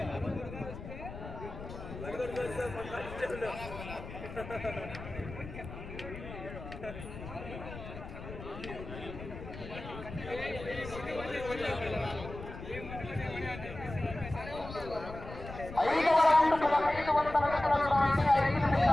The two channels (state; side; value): noise; left; rumble, 11 dB below the sound